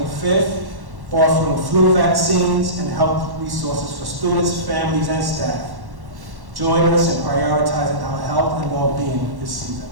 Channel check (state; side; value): late; left; 1.1 ms